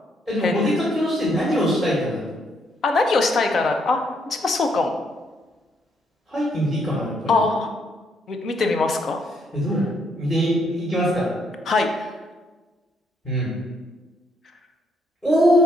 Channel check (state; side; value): normal; both; correlation 0.72